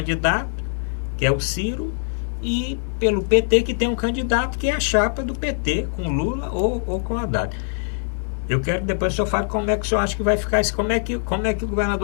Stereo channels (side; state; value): right; silent; digital silence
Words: que é o Ciro, e pelo PT, que tem um candidato que é a chapa do PT, com Lula ou com Haddad. Eu quero que depois o senhor fale como é que o senhor acha que vai ficar isso, como é que o